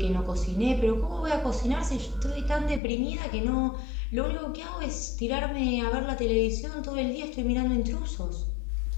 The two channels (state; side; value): drops out; right; at 2.8 s